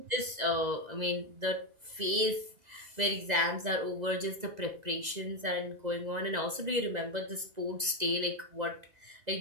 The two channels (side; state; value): left; late; 2.0 ms